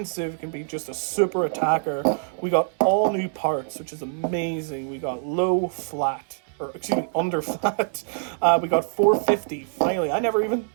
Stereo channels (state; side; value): silent; left; digital silence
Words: can be just a super attacker. We got all new parts, which is amazing. We got low flat, or excuse me, under flat. We got 450, finally. I